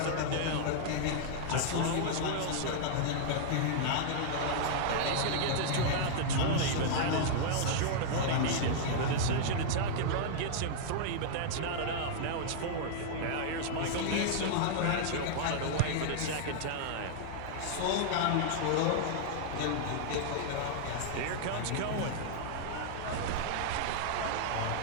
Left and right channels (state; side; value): different; both; correlation -0.01